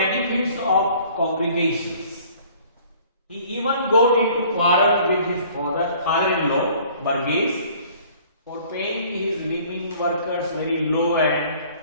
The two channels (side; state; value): both; inverted; correlation -0.53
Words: of congregations. He even got into quarrel with his father-in-law, Burgess, for paying his living workers very low and